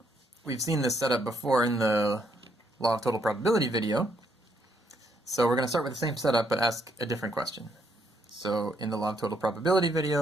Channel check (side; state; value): both; normal; correlation 0.73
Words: We've seen this setup before in the Law of Total Probability video, so we're going to start with the same setup but ask a different question. So in the Law of Total Probability